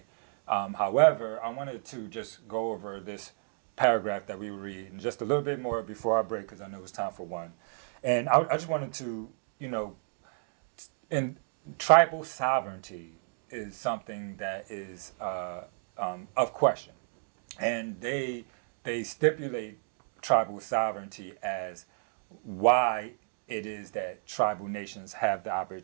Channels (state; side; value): silent; left; digital silence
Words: However, I wanted to just go over this paragraph that we read and just a little bit more before our break, because I know it's time for one. And I just wanted to, and tribal sovereignty is something that is of question. And they stipulate tribal sovereignty as why it is that tribal nations have the